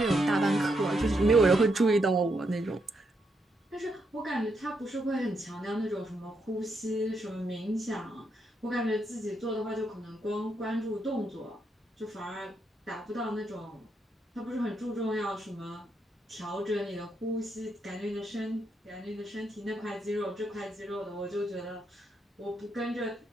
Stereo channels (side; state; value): both; normal; correlation 0.80